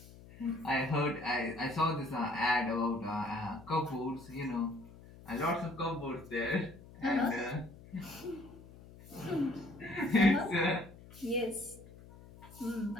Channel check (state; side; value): noise; left; hum, 19 dB below the sound